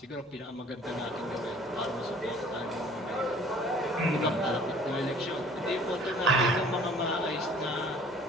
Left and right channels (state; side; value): normal; both; correlation 0.52